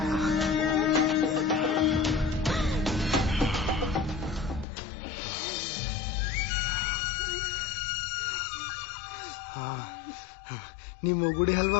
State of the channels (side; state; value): right; drops out; at 4.7 s